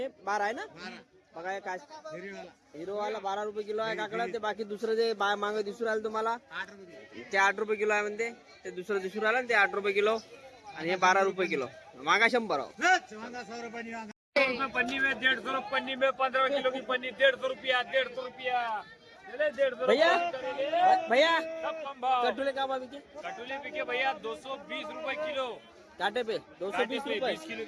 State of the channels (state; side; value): identical; both; correlation 1.00